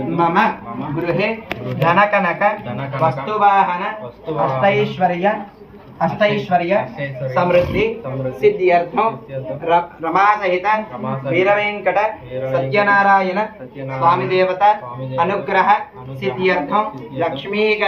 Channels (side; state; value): both; identical; correlation 1.00